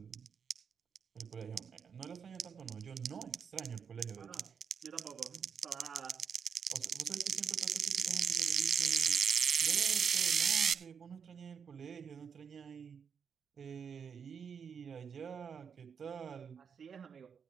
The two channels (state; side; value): quieter; left; 6.8 dB